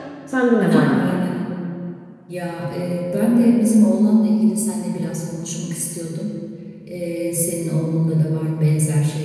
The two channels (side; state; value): both; identical; correlation 1.00